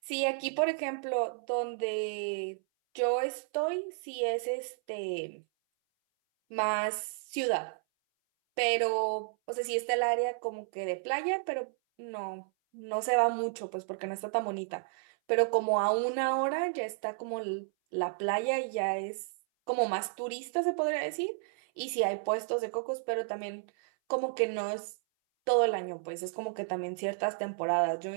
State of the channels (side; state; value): left; silent; 56 dB below the other